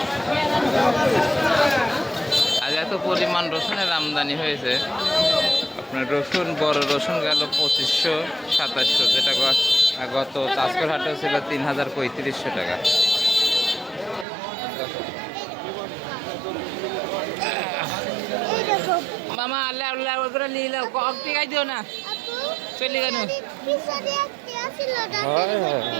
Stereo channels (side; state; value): left; drops out; at 14.2 s